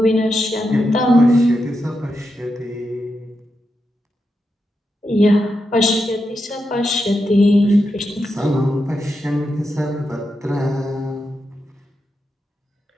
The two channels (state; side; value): normal; both; correlation 0.86